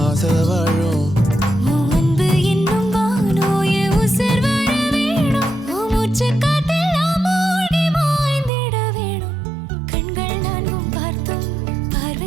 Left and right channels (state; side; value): drops out; left; at 8.5 s